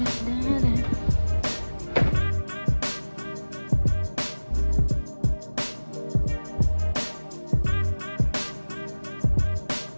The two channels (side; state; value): both; inverted; correlation -1.00